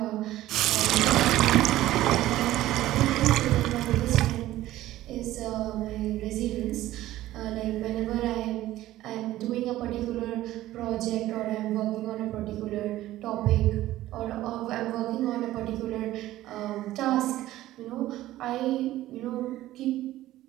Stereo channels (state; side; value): quieter; left; 15.1 dB